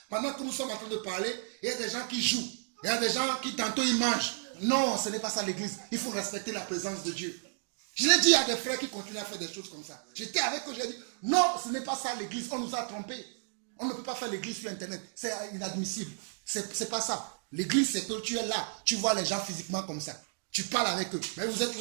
Pendant que nous sommes en train de parler, il y a des gens qui jouent. Il y a des gens qui tantôt ils mangent. Non, ce n'est pas ça l'église. Il faut respecter la présence de Dieu. Je l'ai dit à des frères qui continuent à faire des choses comme ça. J'étais avec eux, j'ai dit, non, ce n'est pas ça l'église. On nous a trompés. On ne peut pas faire l'église sur Internet. C'est inadmissible. C'est pas ça. L'église, c'est que tu es là. Tu vois les gens physiquement comme ça. Tu parles avec eux. Mais vous êtes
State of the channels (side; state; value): left; silent; digital silence